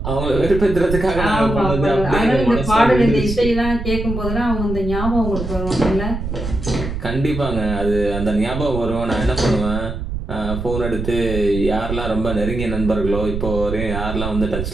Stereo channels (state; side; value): noise; right; rumble, 5 dB below the sound